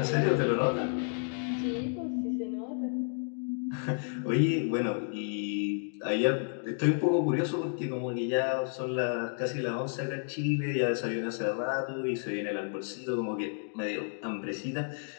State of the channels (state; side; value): silent; right; 57 dB below the other